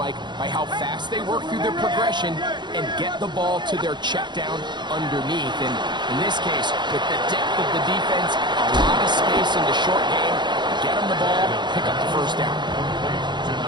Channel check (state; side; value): late; left; 0.22 ms